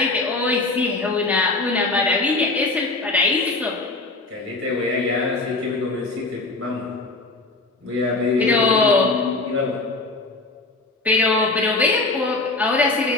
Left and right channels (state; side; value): quieter; right; 3.3 dB